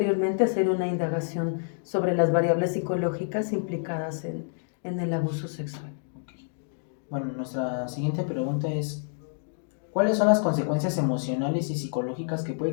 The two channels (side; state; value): right; silent; digital silence